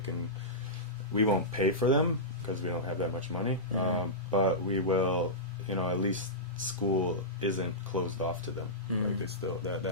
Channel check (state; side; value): normal; both; correlation -0.15